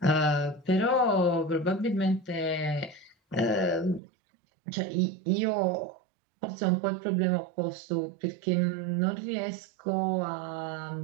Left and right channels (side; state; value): left; drops out; at 4.0 s